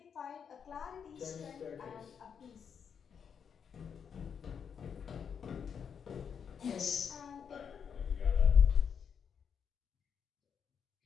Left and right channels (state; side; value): quieter; right; 7.2 dB